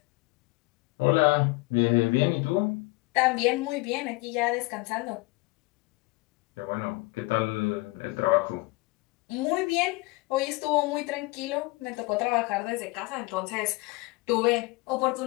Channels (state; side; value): quieter; right; 23.7 dB